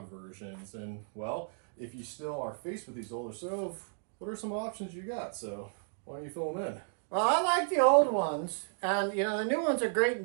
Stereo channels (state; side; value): silent; left; 56 dB below the other